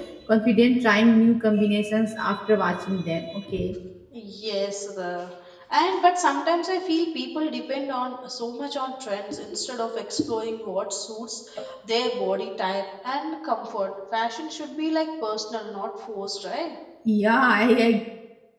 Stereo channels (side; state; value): both; identical; correlation 1.00